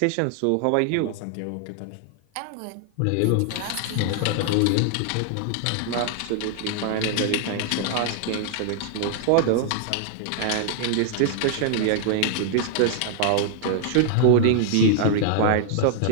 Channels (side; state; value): both; different; correlation 0.00